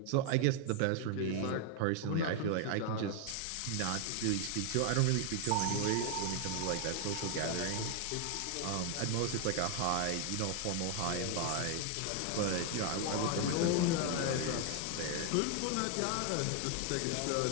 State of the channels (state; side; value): different; both; correlation 0.00